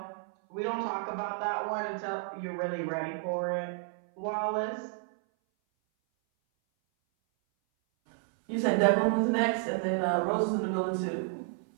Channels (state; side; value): silent; left; 57 dB below the other